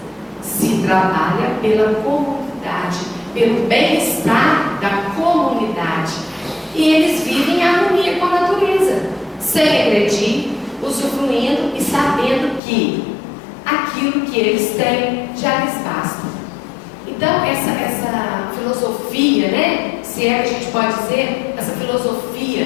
Se trabalha pela comunidade, pelo bem-estar da comunidade. E eles vivem em harmonia com a natureza, sem agredir, usufruindo e sabendo que aquilo que eles têm já lhes basta. Então, essa filosofia, né, se é que a gente pode dizer, essa filosofia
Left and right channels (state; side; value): drops out; right; at 12.6 s